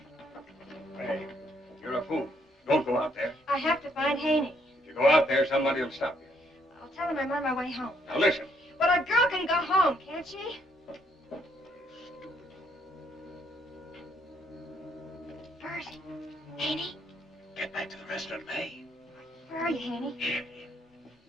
Hey, you're a fool. Don't go out there. I have to find Haney. If you go out there, somebody will stop you. I'll tell him I'm on my way home. Now, listen. But a girl can go home, can't she? Bert, Haney? Get back to the restaurant, May. Where are you, Haney? Here.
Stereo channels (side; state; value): both; normal; correlation 0.71